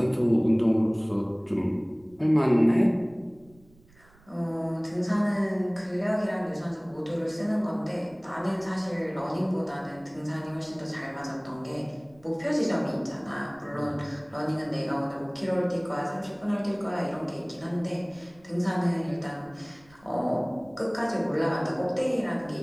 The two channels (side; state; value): right; noise; rumble, 28 dB below the sound